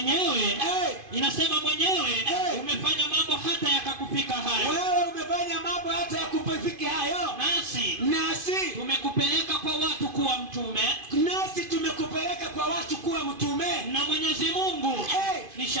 inasema mwenyewe umefanya mambo hata yakakufika hayo. Wewe umefanya mambo hata yakupifika hayo. Nasi tumekupeleka kwa watu kuwa mtume. Na Mwenyezi Mungu ni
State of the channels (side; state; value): left; late; 2.5 ms